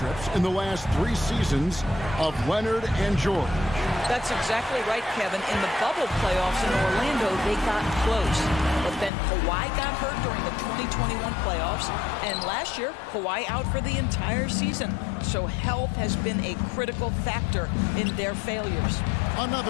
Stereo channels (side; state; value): right; drops out; at 9.1 s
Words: in the last 3 seasons of Leonard and George. That's exactly right, Kevin. In the bubble playoffs in Orlando, they got close. But then Kawhi got hurt during the 2021 playoffs, and last year, Kawhi out for the entire season. So health has been a critical factor in their failures.